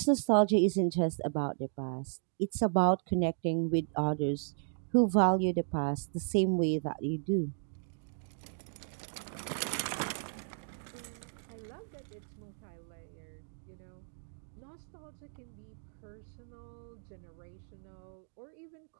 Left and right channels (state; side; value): silent; left; digital silence